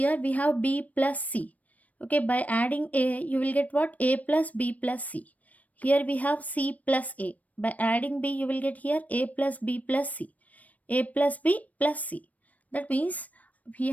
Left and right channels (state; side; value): late; right; 0.071 ms